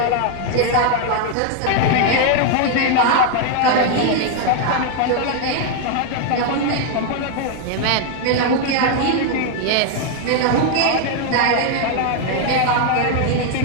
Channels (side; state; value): both; different; correlation 0.00